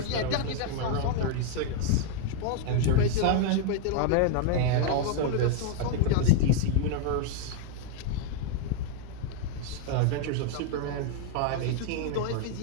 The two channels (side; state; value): both; different; correlation 0.00